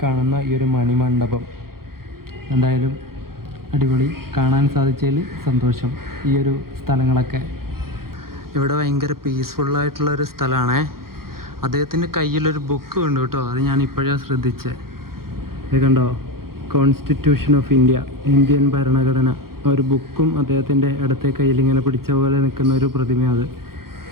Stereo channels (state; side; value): late; left; 0.93 ms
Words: കാണുന്ന ഈ ഒരു മണിമണ്ഡപം. എന്തായാലും അടിപൊളി, കാണാൻ സാധിച്ചതിൽ സന്തോഷം. ഈ ഒരു സ്ഥലങ്ങളൊക്കെ ഇവിടെ ഭയങ്കര പീസ്ഫുള്ളായിട്ടുള്ളൊരു സ്ഥലമാണേ. അദ്ദേഹത്തിൻ്റെ കയ്യിലൊരു ബുക്ക് ഉണ്ട് കേട്ടോ. അത് ഞാൻ ഇപ്പോഴാണ് ശ്രദ്ധിച്ചത്. ഇത് കണ്ടോ, കോൺസ്റ്റിറ്റ്യൂഷൻ ഓഫ് ഇന്ത്യ, ഇന്ത്യൻ ഭരണഘടന. ഒരു ബുക്കും അദ്ദേഹത്തിൻ്റെ ഇടത്തെ കയ്യിൽ ഇങ്ങനെ പിടിച്ച പോലെ നിൽക്കുന്ന ഒരു പ്രതിമ. അത്